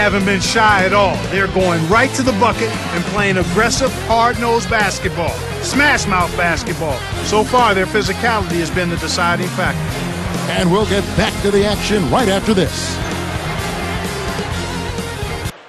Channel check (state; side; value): identical; both; correlation 1.00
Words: been shy at all. They're going right to the bucket and playing aggressive, hard-nosed basketball. Smash-mouth basketball. So far, their physicality has been the deciding factor. And we'll get back to the action right after this.